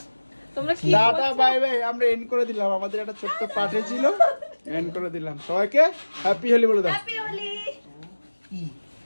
তোমরা কি টাটা বাই বাই আমরা এন্ড করে দিলাম আমাদের একটা ছোট্ট পার্টি ছিল এন্ড করে দিলাম সবাইকে হ্যাপি হোলি বলে দাও হ্যাপি হোলি।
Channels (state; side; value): inverted; both; correlation -1.00